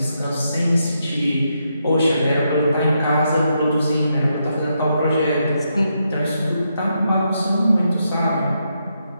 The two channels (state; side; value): inverted; both; correlation -0.81